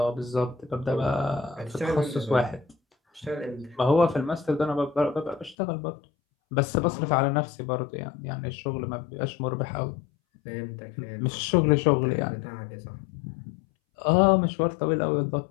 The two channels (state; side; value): drops out; right; at 5.6 s